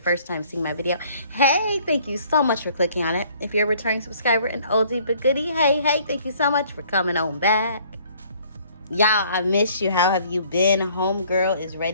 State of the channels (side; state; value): both; inverted; correlation -0.59